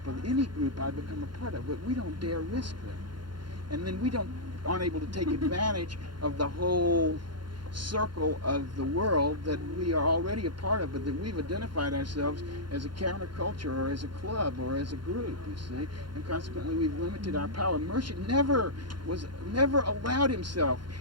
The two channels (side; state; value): left; late; 0.72 ms